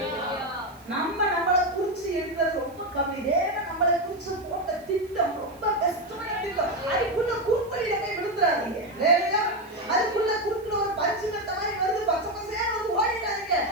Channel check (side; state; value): right; noise; hiss, 27 dB below the sound